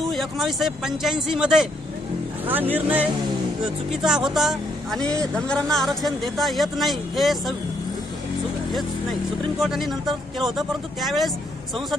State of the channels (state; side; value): normal; both; correlation 0.72